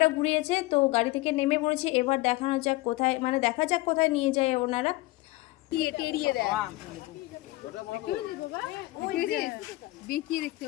ঘুরিয়েছে। তো গাড়ি থেকে নেমে পড়েছি, এবার দেখা যাক কোথায় নিয়ে যায় ওনারা।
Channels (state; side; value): quieter; right; 20.1 dB